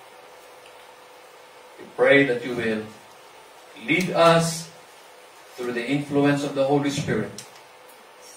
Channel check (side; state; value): both; identical; correlation 1.00